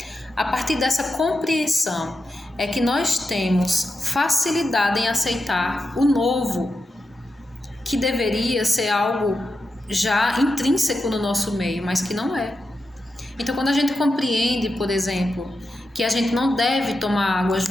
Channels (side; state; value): both; normal; correlation 0.88